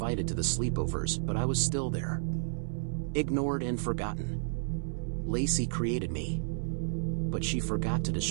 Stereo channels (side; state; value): left; silent; 57 dB below the other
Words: to the sleepovers, but I was still there. Ignored and forgotten. Lacey created me. But she forgot to